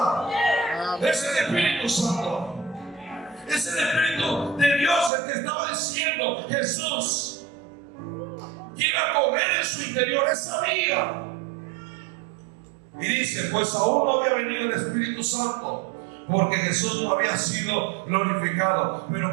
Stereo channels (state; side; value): drops out; left; at 5.1 s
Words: Es el Espíritu Santo. Es el Espíritu de Dios el que estaba diciendo Jesús que iba a comer en su interior esa vida. Y dice: pues aún no había venido el Espíritu Santo, porque Jesús no había sido glorificado.